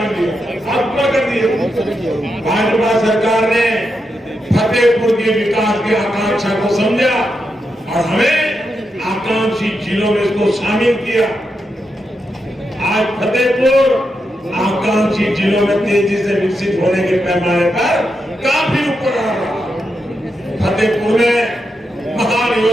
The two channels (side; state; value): both; normal; correlation 0.85